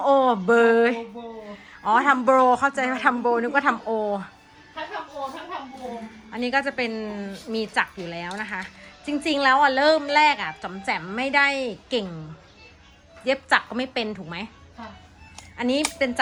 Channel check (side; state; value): both; identical; correlation 1.00